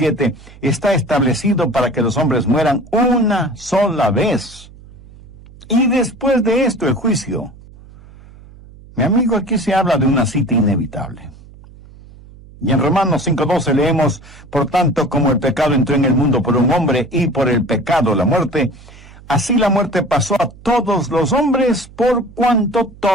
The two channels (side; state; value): right; noise; hum, 21 dB below the sound